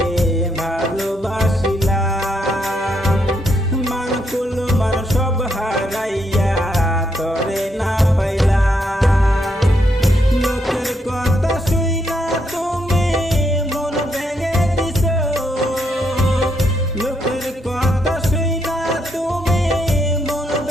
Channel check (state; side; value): normal; both; correlation 0.77